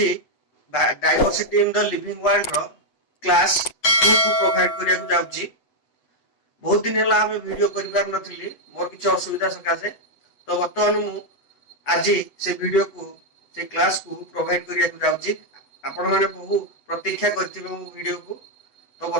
diversity in the living world रो क्लास 2 को प्रोवाइड करिया को जाउची। बहुत दिन हला हमें वीडियो करिवार नथिली, मोर किछ असुविधा सकासे। तो वर्तमान मु आज से वीडियो को से क्लास को प्रोवाइड करिया को जाउची। आपण माने बहु प्रतीक्षा करथिबे मो वीडियो को। तो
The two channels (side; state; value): right; late; 8.0 ms